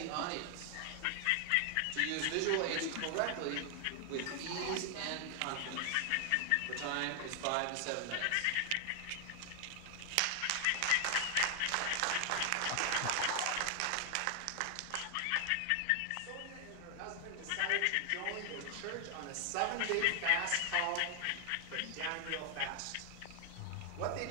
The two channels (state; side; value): different; both; correlation 0.00